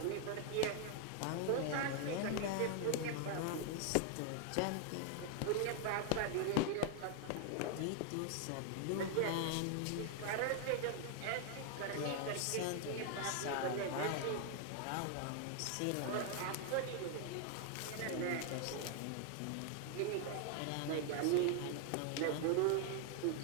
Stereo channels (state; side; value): different; both; correlation 0.00